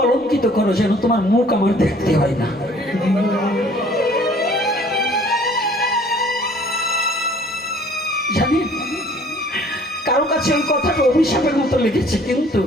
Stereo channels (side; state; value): both; normal; correlation 0.55